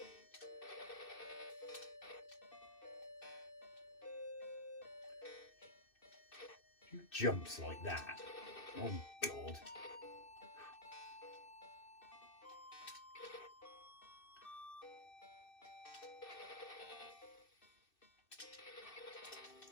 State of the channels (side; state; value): right; late; 2.6 ms